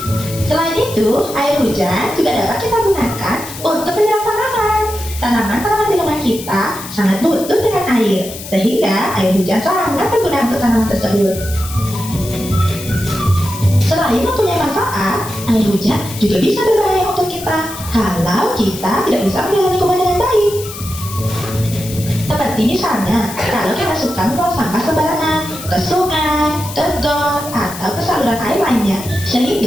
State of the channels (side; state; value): left; noise; hiss, 12 dB below the sound